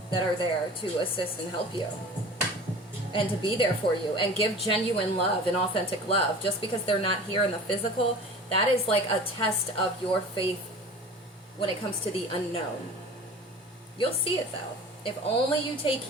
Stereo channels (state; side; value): normal; both; correlation 0.40